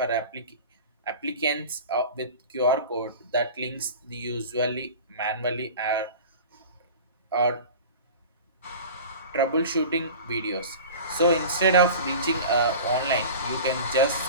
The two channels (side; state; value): both; inverted; correlation -0.36